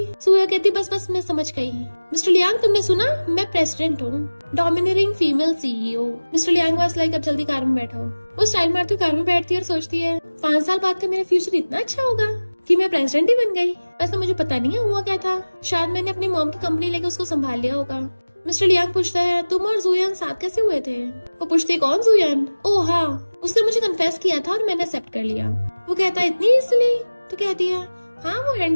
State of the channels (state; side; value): inverted; both; correlation -1.00